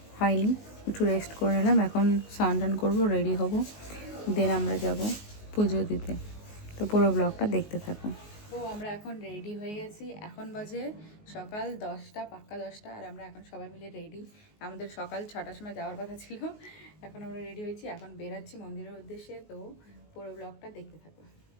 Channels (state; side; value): late; right; 19 ms